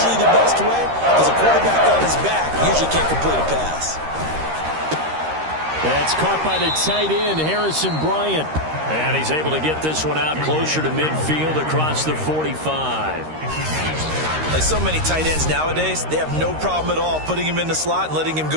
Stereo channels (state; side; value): late; left; 13 ms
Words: the best way because a quarterback on his back usually can't complete a pass. That's caught by the tight end, Harrison Bryant. And he's able to get this one out closer to midfield across the 45. Like so many tight ends nowadays, they have no problem at all putting him in the slot and letting him